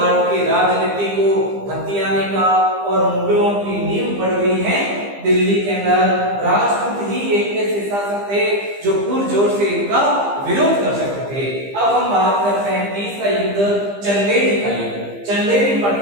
की राजनीति को हथियाने का और मुगलों की नींव पड़ गई है दिल्ली के अंदर। राजपूत ही एक ऐसे शासक थे जो पुरजोर से इनका विरोध कर सकते थे। अब हम बात करते हैं तीसरा युद्ध, चंदेरी का युद्ध। चंदेरी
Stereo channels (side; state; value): left; late; 15 ms